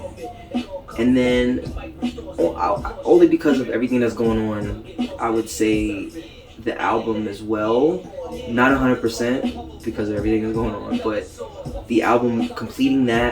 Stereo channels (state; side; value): identical; both; correlation 1.00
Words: And then only because of everything that's going on, I would say the album as well. Not 100% because of everything that's going on, but the album, completing